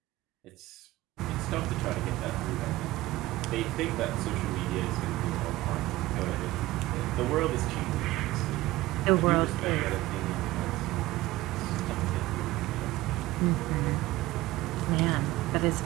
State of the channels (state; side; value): quieter; left; 17.7 dB